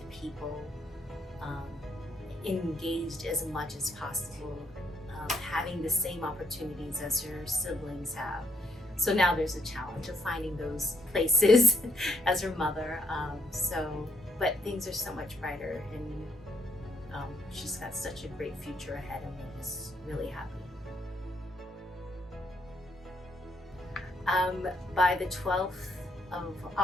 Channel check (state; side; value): normal; both; correlation 0.72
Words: people, engaged as much as possible, having the same opportunities as her siblings have. So now there's a challenge of finding those places as her mother. But things are so much brighter, and she's got such a great future ahead, and we're just really happy. By the 12th of